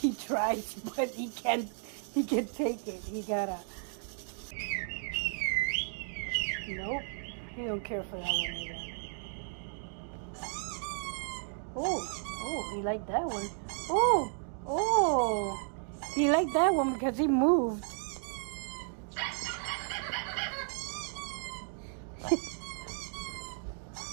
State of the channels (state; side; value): silent; left; 55 dB below the other